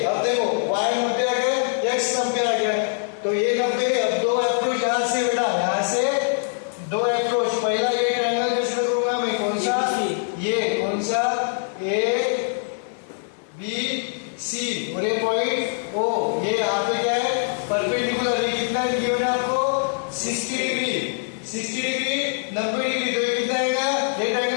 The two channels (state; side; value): silent; right; digital silence